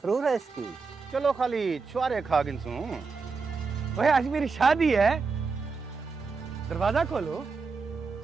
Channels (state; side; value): quieter; left; 4.7 dB